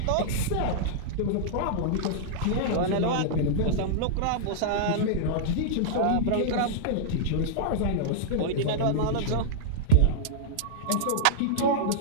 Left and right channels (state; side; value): different; both; correlation -0.02